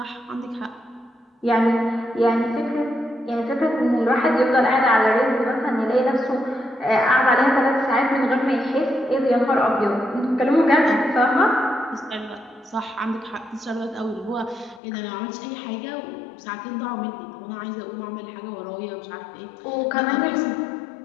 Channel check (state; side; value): drops out; right; at 14.8 s